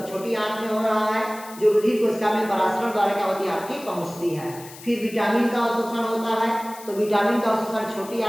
छोटी आंत में हो रहा है, जो रुधिर कोशिका में परासरण द्वारा क्या होती है आपकी पहुंचती है। फिर विटामिन का अवशोषण होता है। तो विटामिन का अवशोषण छोटी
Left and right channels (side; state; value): left; noise; hiss, 17 dB below the sound